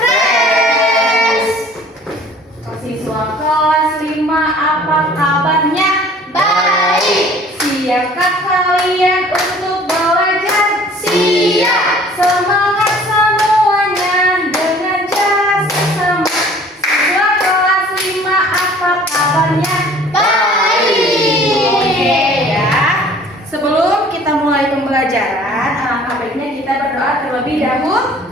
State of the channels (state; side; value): normal; both; correlation 0.51